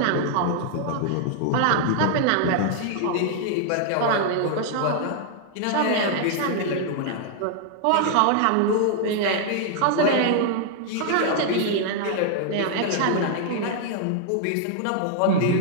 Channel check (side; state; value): both; different; correlation 0.00